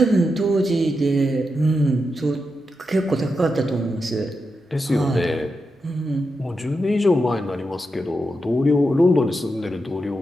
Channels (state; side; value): normal; both; correlation 0.87